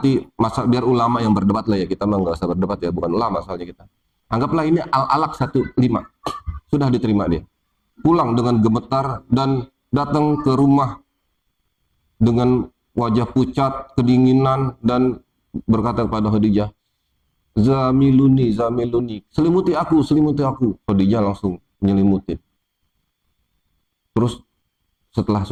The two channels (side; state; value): both; identical; correlation 1.00